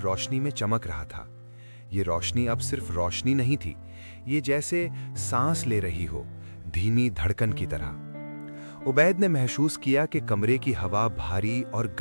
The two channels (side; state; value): both; inverted; correlation -1.00